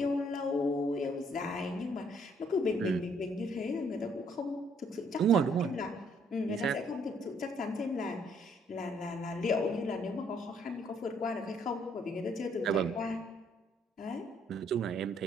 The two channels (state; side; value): normal; both; correlation 0.66